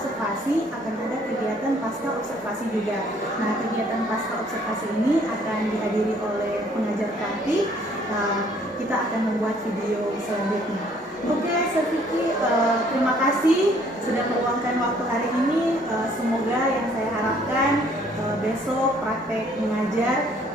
akan ada kegiatan pasca observasi juga. Nah, kegiatan pasca observasi ini akan dihadiri oleh pengajar praktik. Kita akan membuat video selanjutnya. Oke, Sir Vicky, terima kasih sudah meluangkan waktu hari ini. Semoga yang saya harapkan besok praktek mengajar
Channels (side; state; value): both; normal; correlation 0.61